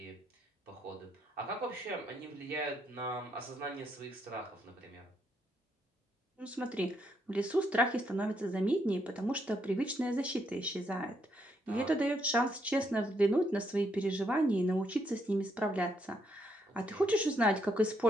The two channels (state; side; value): normal; both; correlation 0.75